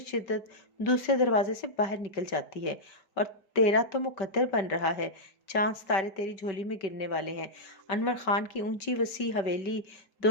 شدت دوسرے دروازے سے باہر نکل جاتی ہے، اور تیرا تو مقدر بن رہا ہے۔ چاند ستارے تیری جھولی میں گرنے والے ہیں۔ انور خان کی اونچی وسیع حویلی،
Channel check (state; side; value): late; right; 5.2 ms